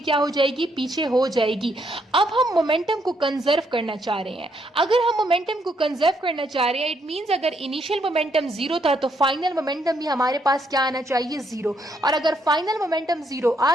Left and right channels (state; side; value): normal; both; correlation 0.74